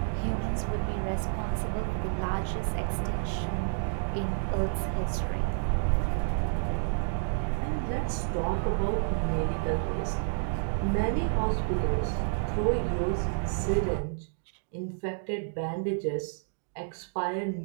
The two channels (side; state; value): left; silent; digital silence